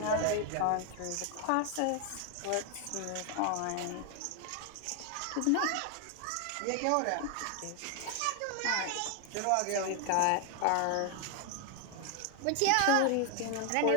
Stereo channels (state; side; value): different; both; correlation 0.01